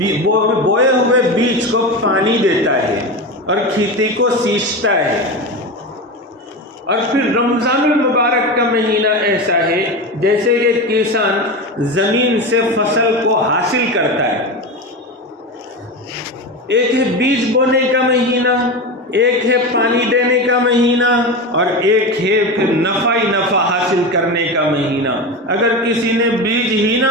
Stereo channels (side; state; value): both; normal; correlation 0.22